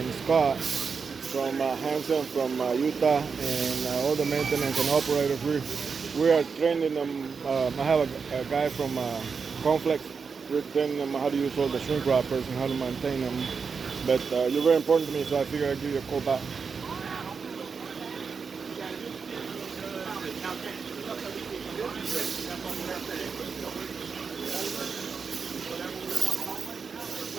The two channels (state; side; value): quieter; left; 5.5 dB